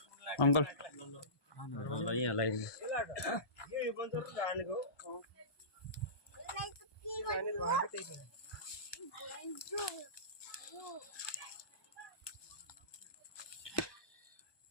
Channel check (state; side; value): late; right; 1.2 ms